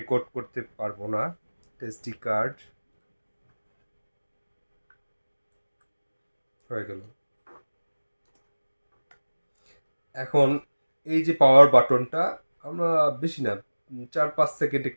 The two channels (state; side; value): inverted; both; correlation -1.00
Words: করতে পারবো না। এসডি কার্ড হয়ে গেল। এখন এই যে পাওয়ার বাটনটা, আমরা বেশি না, 4-5 সেকেন্ড